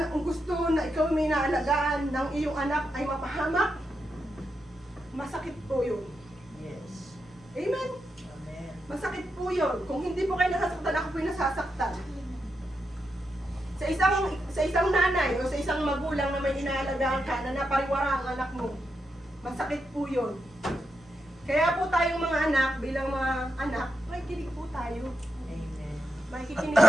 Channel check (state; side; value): normal; both; correlation 0.86